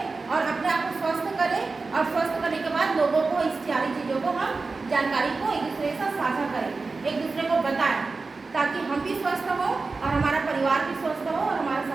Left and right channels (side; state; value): left; quieter; 4.0 dB